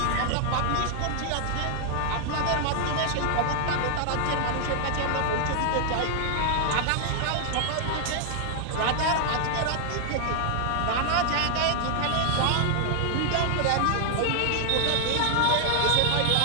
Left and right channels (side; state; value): both; different; correlation 0.00